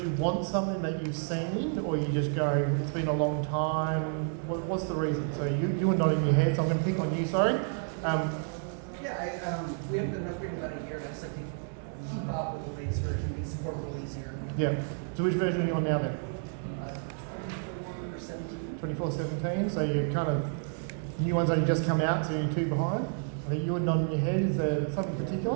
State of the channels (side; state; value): left; silent; 57 dB below the other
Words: want something that you've seen, or you just go, it's been a long time? What's the reason? So you were nodding your head, so I'm going to pick on you, sorry. We haven't done an upgrade in about a year, and I just like to keep up with the latest version, make support a little easier. Yeah. So which version are you on now then? 24/17. 24/17, so you're kind of, new ones only just come out, so you're 2 behind. I think you were nodding your head, is there something